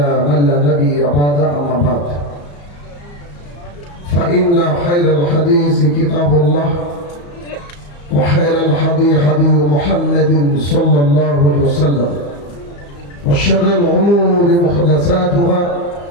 من لا نبي بعد أما بعد فإن خير الحديث كتاب الله وخير الهدي هدي محمد صلى الله عليه وسلم وشر الأمور محدثاتها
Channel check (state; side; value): late; right; 34 ms